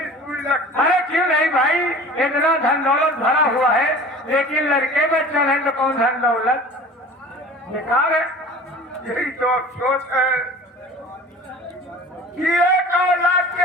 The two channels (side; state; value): both; normal; correlation 0.42